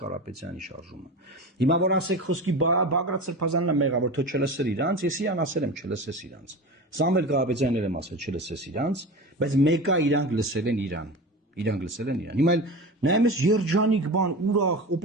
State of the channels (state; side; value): normal; both; correlation 0.29